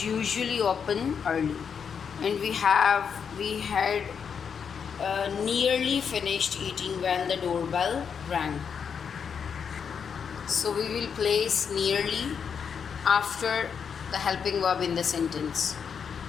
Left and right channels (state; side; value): quieter; right; 6.8 dB